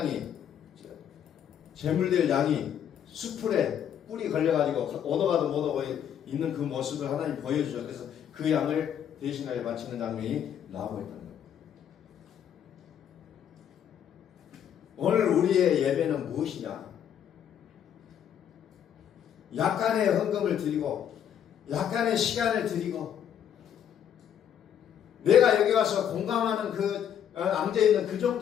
제물될 양이 수풀에 뿔이 걸려가지고 오도가도 못 오고 있는 그 모습을 하나님 보여주죠. 그래서 그 양을 대신하여 바치는 장면이 나오고 있다는 거예요. 오늘 우리의 예배는 무엇이냐? 약간의 헌금을 드리고 약간의 시간을 드리고 내가 여기 와서 공감하는 그 앉아있는 그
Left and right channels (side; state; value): right; quieter; 9.3 dB